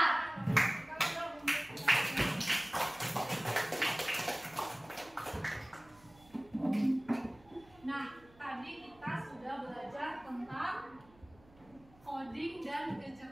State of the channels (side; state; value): right; noise; hum, 26 dB below the sound